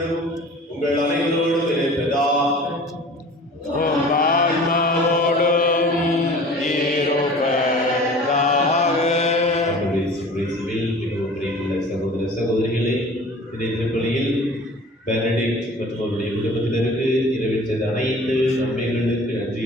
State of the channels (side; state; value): both; normal; correlation 0.44